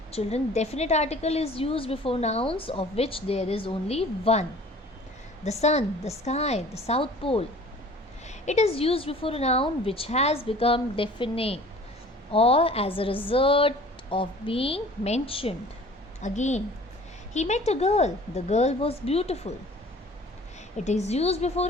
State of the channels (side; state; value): both; normal; correlation 0.48